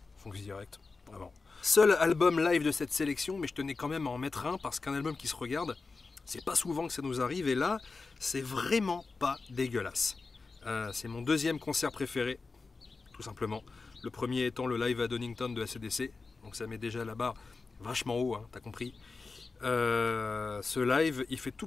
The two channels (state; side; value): quieter; right; 4.1 dB